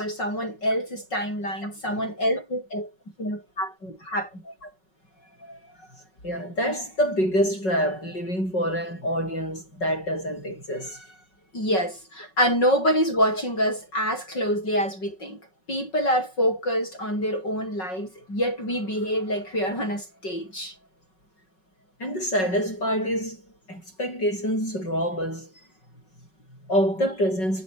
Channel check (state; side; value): late; right; 5.4 ms